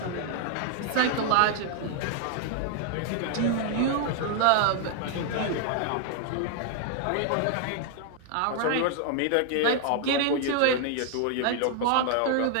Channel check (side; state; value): both; different; correlation 0.00